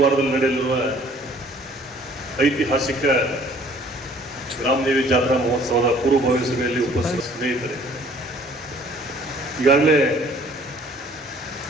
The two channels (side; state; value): both; normal; correlation 0.56